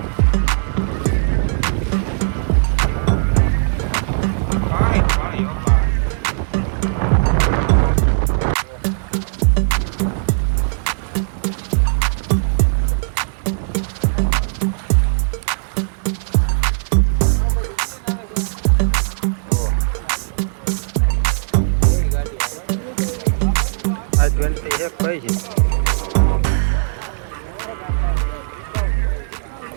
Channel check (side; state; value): left; silent; digital silence